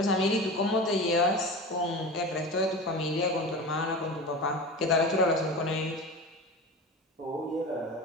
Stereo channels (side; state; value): both; normal; correlation 0.30